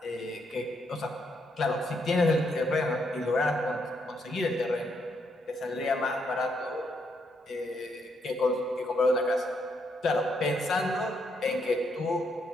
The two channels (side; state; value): both; normal; correlation 0.76